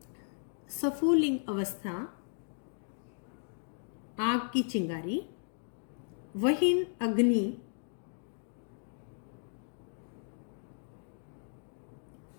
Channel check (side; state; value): right; silent; digital silence